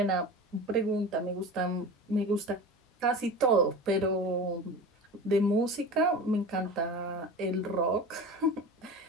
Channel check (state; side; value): normal; both; correlation 0.32